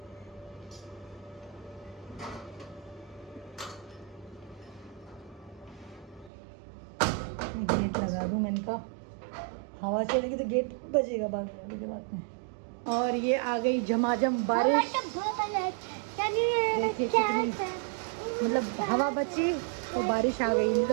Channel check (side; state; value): left; drops out; at 6.3 s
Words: गेट लगा दूँ मैंने कहा, हवा चलेगी तो गेट बजेगा बाद में। और ये आ गई झमाझम बारिश। देखिए कितनी मतलब हवा बची तो बारिश आ गई। नहीं